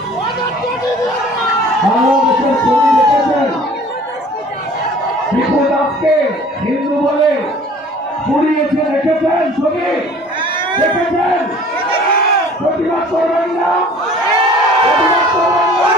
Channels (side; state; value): both; normal; correlation 0.49